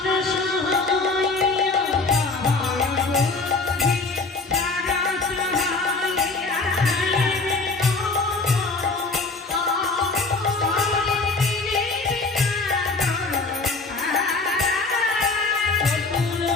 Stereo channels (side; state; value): right; quieter; 3.7 dB